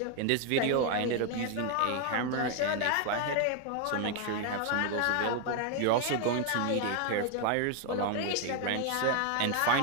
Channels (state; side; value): different; both; correlation 0.00